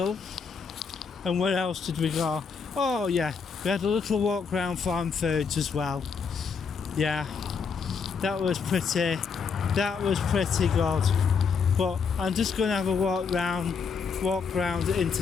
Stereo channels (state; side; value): quieter; right; 5.6 dB